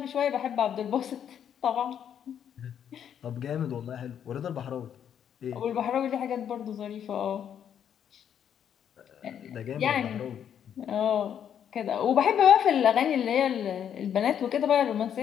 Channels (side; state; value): right; quieter; 9.0 dB